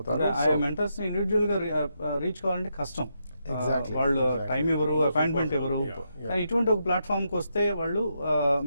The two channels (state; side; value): inverted; both; correlation -0.81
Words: మెంటర్స్ ఇండివిజువల్ గా రీచ్ కావాలంటే కష్టం. వాళ్ళు టైం ఎవరు, అపాయింట్మెంట్ ఎవరు, కానీ ఇటువంటి ఒక ప్లాట్ఫామ్ కి వస్తే వాళ్ళు